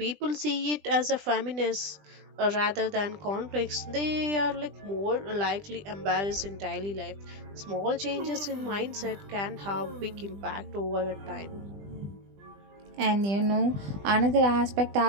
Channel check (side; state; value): left; late; 20 ms